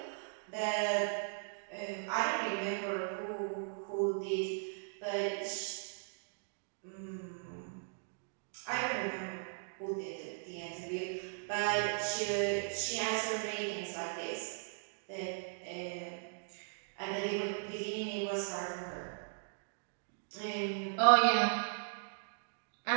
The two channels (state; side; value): silent; left; digital silence